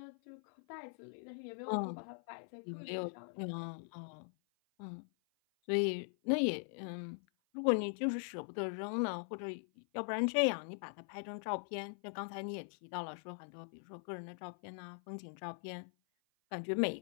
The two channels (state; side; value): silent; right; 50 dB below the other